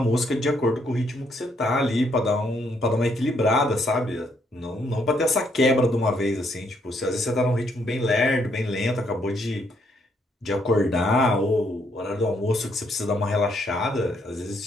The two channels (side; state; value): both; normal; correlation 0.72